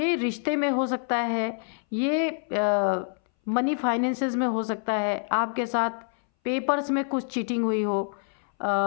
रिश्ते में हो सकता है, ये मनी फाइनेंसेस में हो सकता है, आपके साथ पेपर्स में कुछ चीटिंग हुई हो,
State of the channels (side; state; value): right; silent; 60 dB below the other